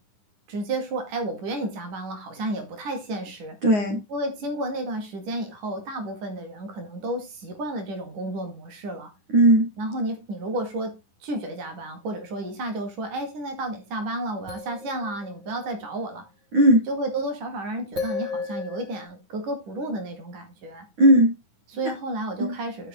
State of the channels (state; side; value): late; left; 9.8 ms